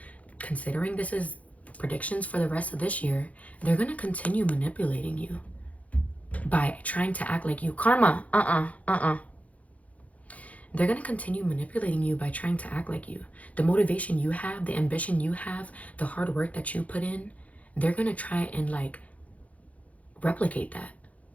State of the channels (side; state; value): right; late; 0.068 ms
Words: considering this is predictions for the rest of this year, they're gonna continue manipulating you by trying to act like you. Karma, they're gonna continue manipulating you by trying to act like you. The motivation you have, the ambition you have, the hard work that you put in, they're gonna try and like replicate that.